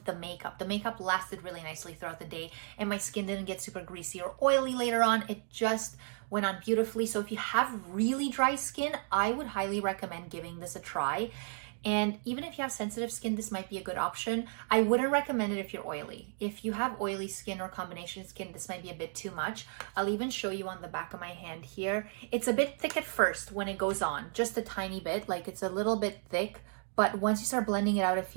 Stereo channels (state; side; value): silent; left; 55 dB below the other